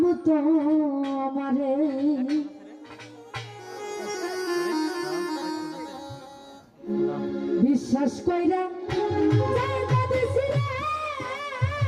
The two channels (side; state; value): both; identical; correlation 1.00